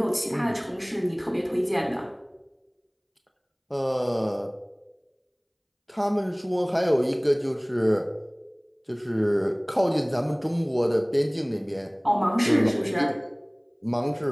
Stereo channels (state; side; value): identical; both; correlation 1.00